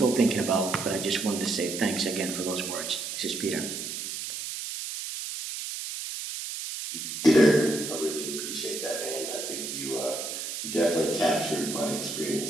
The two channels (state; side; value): noise; right; hiss, 6 dB below the sound